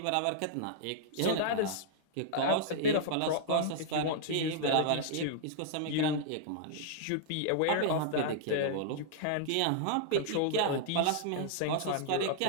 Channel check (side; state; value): both; different; correlation -0.01